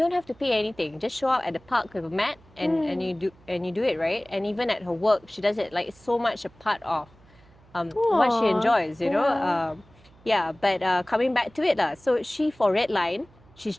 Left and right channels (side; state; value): right; noise; hum, 27 dB below the sound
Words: have to pay anything. Just show up at the park with a mat and you do it, right? And even at her work, she does it. Like it's so much a part of what she enjoys, But coming back to it, so she for Red Line, she's